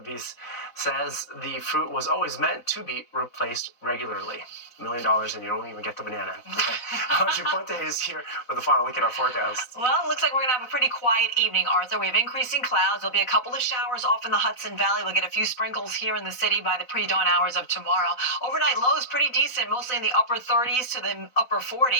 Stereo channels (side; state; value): right; late; 4.0 ms